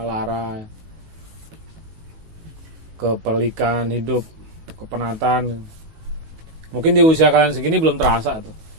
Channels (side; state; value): left; late; 19 ms